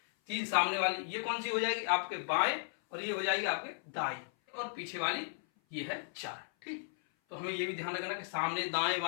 3 सामने वाली। ये कौन सी हो जाएगी आपके बाएं, और ये हो जाएगी आपके दाएं, और पीछे वाली ये है 4। ठीक, तो हमें ये भी ध्यान रखना कि सामने दाएं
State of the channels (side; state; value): right; silent; 54 dB below the other